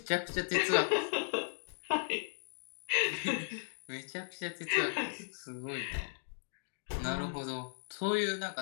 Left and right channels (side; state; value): right; silent; digital silence